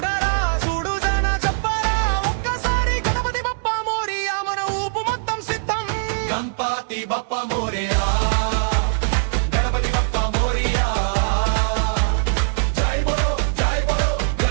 చూడు జన చెప్పరా ఒక్కసారి గణపతి బప్ప మోరియా, మన ఊపు మొత్తం సిద్ధం. గణపతి బప్ప మోరియా, గణపతి బప్ప మోరియా, జై బోలో జై బోలో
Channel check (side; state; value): left; silent; digital silence